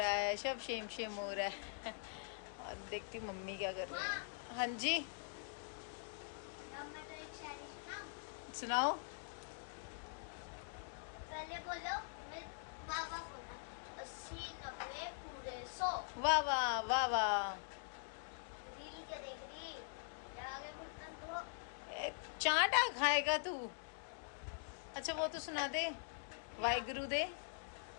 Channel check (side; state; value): right; silent; digital silence